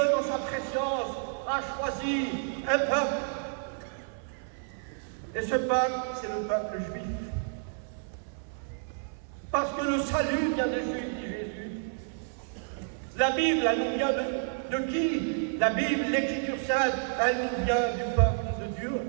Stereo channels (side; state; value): left; silent; 58 dB below the other